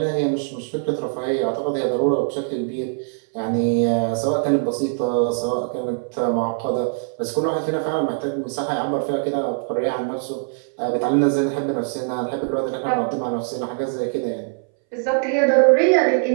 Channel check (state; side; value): silent; left; 62 dB below the other